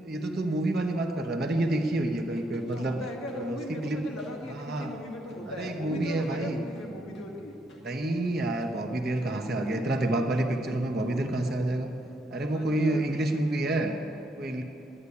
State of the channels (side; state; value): both; normal; correlation 0.75